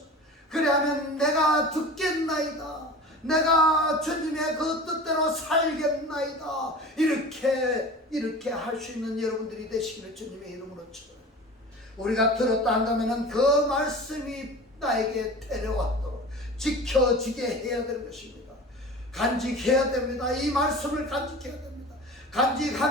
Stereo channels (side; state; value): both; normal; correlation 0.37